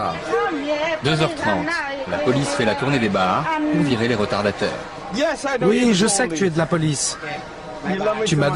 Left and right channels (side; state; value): both; identical; correlation 1.00